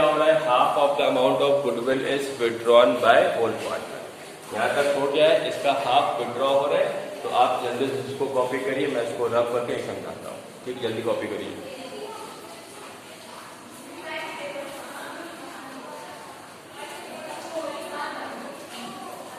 हो रहा है half of the amount of goodwill is withdrawn by old partner. यहाँ तक हो गया है, इसका हाफ विड्रॉ हो रहा है। तो आप जल्दी से इसको कॉपी करिए, मैं इसको रब करके समझाता हूँ। ठीक, जल्दी कॉपी करिए।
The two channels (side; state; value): both; identical; correlation 1.00